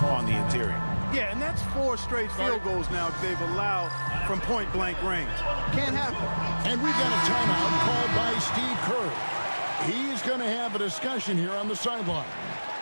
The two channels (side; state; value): both; inverted; correlation -1.00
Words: on the interior. Yeah, and that's 4 straight field goals now they've allowed from point-blank range. Can't happen. And we've got a timeout called by Steve Kerr. He's going to have a discussion here on the sideline.